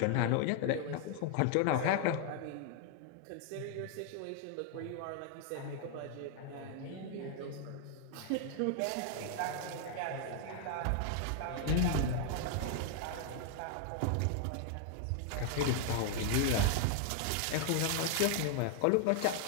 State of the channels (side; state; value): both; different; correlation 0.00